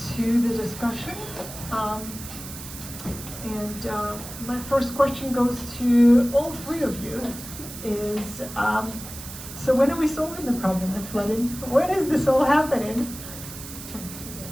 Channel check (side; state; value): right; noise; hiss, 12 dB below the sound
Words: to the discussion. My first question goes to all three of you. Is so when are we solving the problem of flooding? When is this all happening?